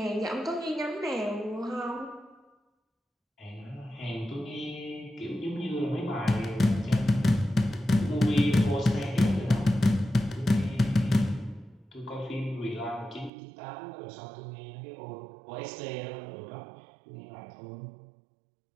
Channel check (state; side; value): drops out; left; at 13.3 s